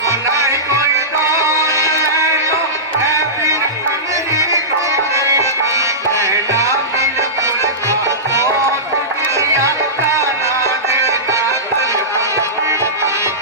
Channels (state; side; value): normal; both; correlation -0.17